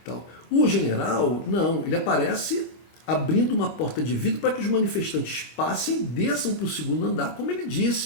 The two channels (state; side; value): late; right; 26 ms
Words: Tal. O general, não, ele aparece abrindo uma porta de vidro para que os manifestantes passem, desçam para o segundo andar, como ele